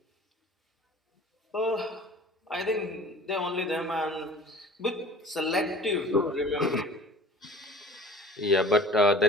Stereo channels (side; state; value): both; normal; correlation 0.45